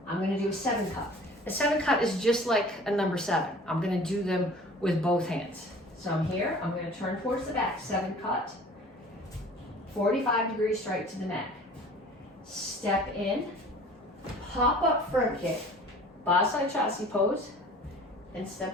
I'm going to do a 7 cut. A 7 cut is just like a number 7. I'm going to do them with both hands. So I'm here, I'm going to turn towards the back, 7 cut, 45-degree strike to the neck. Step in, pop up front kick, Basai Chasi pose, and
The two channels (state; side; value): normal; both; correlation 0.46